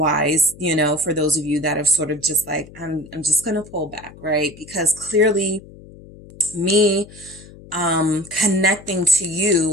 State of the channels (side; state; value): left; noise; hum, 20 dB below the sound